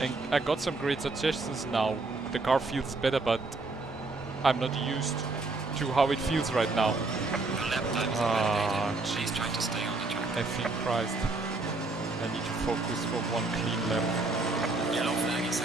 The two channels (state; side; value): quieter; left; 3.4 dB